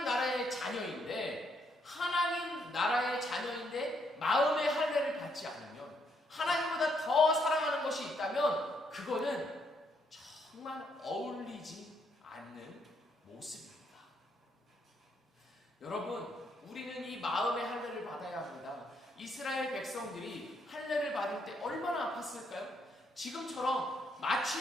나라의 자녀인데 마음의 할례를 받지 않으면, 하나님보다 더 사랑하는 것이 있다면 그거는 정말 어울리지 않는 모습입니다. 여러분, 우리는 이 마음의 할례를 받아야 합니다. 이스라엘 백성들이 할례를 받을 때 얼마나 아팠을까요? 지금처럼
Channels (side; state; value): both; normal; correlation 0.74